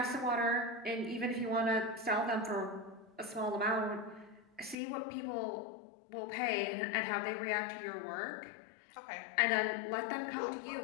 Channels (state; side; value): drops out; right; at 4.8 s